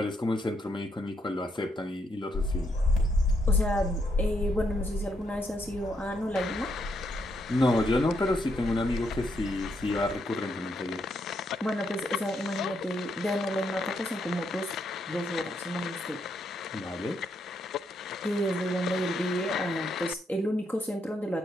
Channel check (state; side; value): normal; both; correlation 0.77